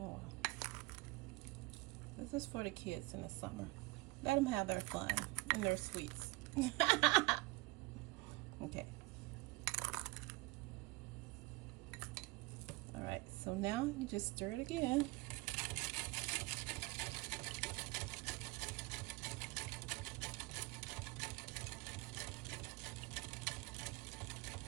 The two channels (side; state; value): left; quieter; 23.2 dB